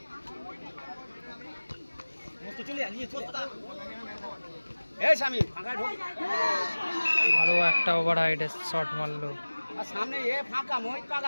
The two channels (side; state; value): both; inverted; correlation -1.00